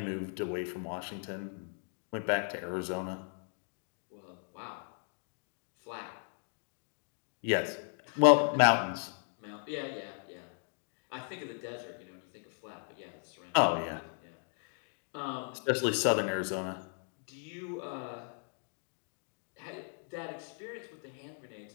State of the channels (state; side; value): silent; right; 54 dB below the other